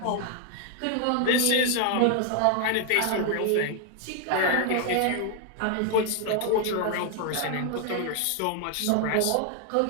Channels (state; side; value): different; both; correlation 0.00